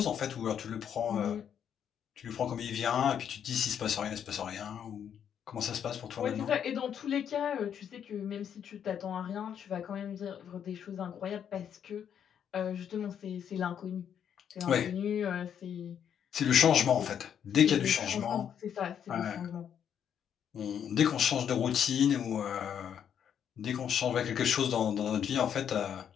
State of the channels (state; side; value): quieter; right; 8.7 dB